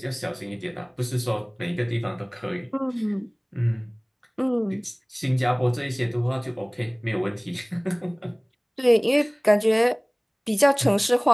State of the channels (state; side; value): identical; both; correlation 1.00